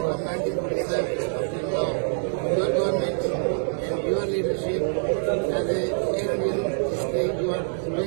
1947 up till now. Your government and your leadership as a Canadian state, you are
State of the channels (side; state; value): left; silent; 61 dB below the other